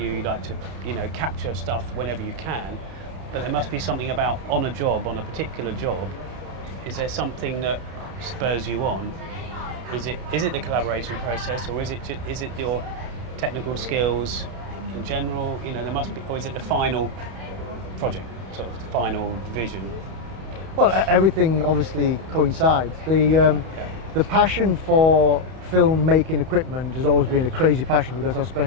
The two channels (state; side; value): late; left; 31 ms